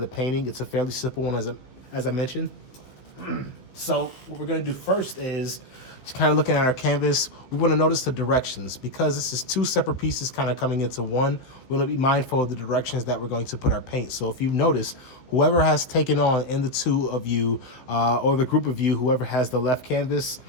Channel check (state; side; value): late; right; 15 ms